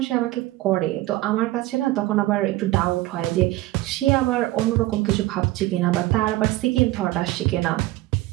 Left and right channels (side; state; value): left; quieter; 17.6 dB